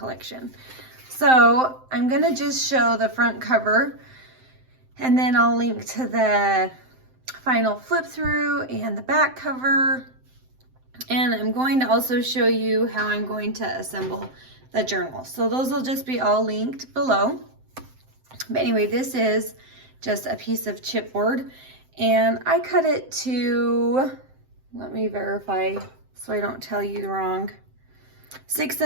So I'm gonna just show the front cover and then I'll link to the final flip through and the back cover. And I'm going to also show you how I'm going to assemble the journal. So those will just be all linked below. But anyway, this is just a piece of chipboard and I cut it to, let me verify so I don't tell you wrong, 6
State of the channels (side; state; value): left; late; 7.7 ms